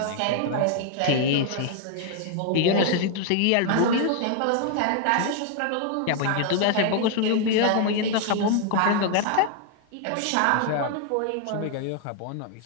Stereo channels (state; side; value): different; both; correlation 0.00